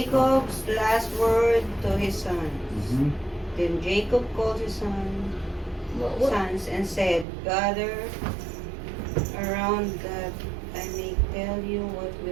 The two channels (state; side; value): drops out; left; at 7.2 s